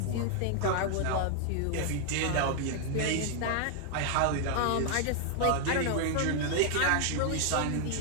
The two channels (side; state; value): both; different; correlation 0.00